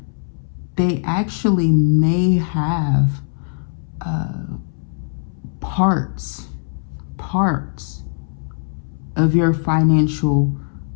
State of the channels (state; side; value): silent; right; 65 dB below the other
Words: they actually may have parts of your financial